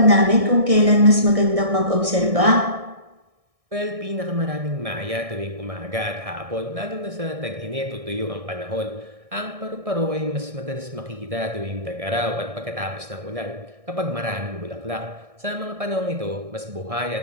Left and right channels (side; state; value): left; late; 1.6 ms